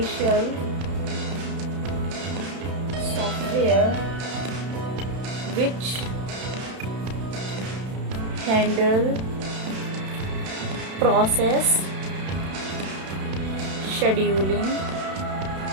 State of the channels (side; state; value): left; late; 32 ms